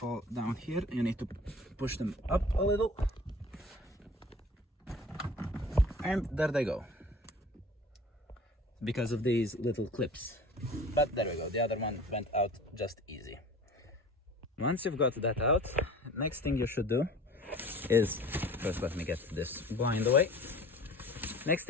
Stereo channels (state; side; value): normal; both; correlation 0.43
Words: down here. You need to push them up a little, and there they go, because of these little clips. But there we go, the other one went out just easy. Once you've got that out, next thing you should do is, first let me get this blind away. Next